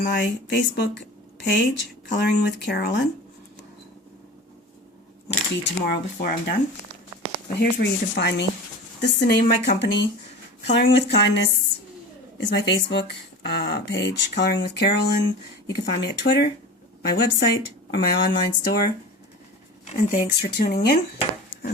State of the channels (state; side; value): normal; both; correlation 0.34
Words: my Facebook page, Coloring with Carolin. Might be tomorrow before I'm done. But here's where you can find me. This is the name of my company. Coloring with Kindness is my Facebook page, Coloring with Carolin. You can find me at Twitter, my website, or my online store. And thanks for tuning in.